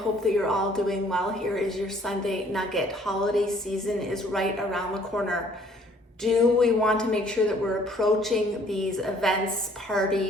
that you're all doing well. Here is your Sunday nugget. Holiday season is right around the corner. Do we want to make sure that we're approaching these events,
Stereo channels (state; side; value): normal; both; correlation 0.59